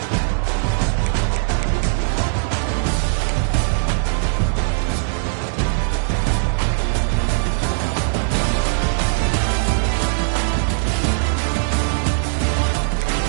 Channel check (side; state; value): left; silent; digital silence